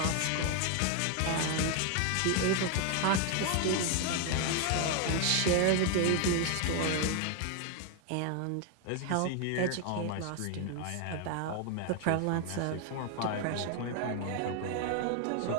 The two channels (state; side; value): different; both; correlation 0.01